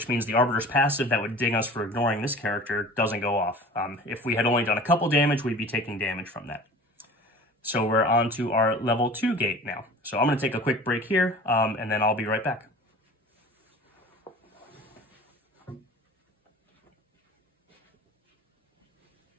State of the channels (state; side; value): normal; both; correlation 0.41